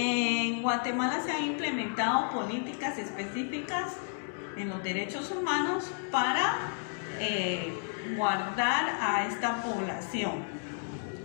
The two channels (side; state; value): right; silent; 57 dB below the other